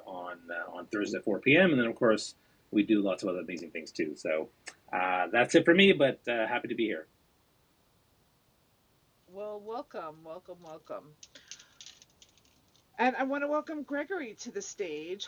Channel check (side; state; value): both; identical; correlation 1.00